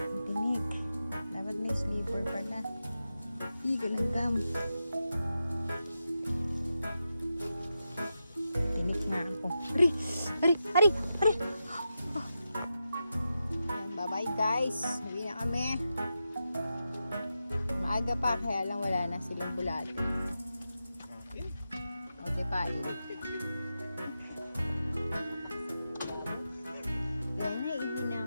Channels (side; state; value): both; inverted; correlation -0.89